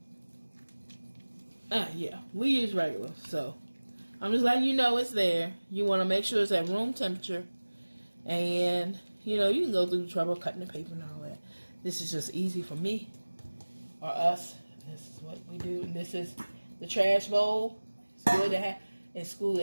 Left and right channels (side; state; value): both; inverted; correlation -1.00